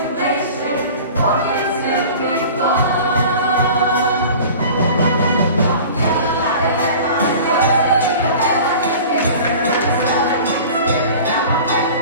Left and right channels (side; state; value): both; inverted; correlation -0.41